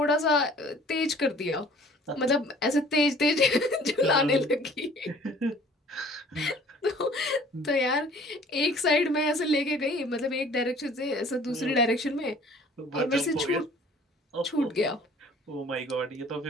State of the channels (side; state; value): both; normal; correlation 0.52